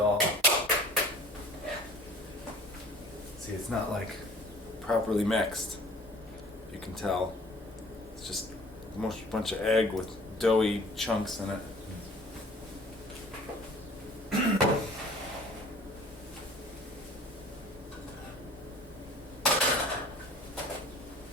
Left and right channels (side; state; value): both; normal; correlation 0.49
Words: See, it's not like properly mixed. You can tell. It's just a bunch of egg with doughy chunks in it.